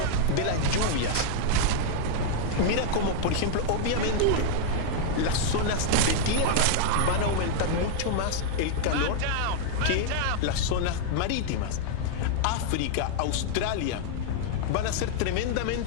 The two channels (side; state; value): both; different; correlation -0.01